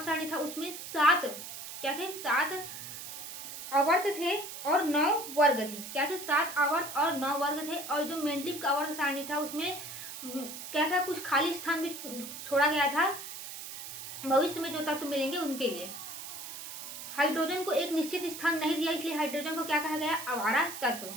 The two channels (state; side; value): noise; right; hiss, 9 dB below the sound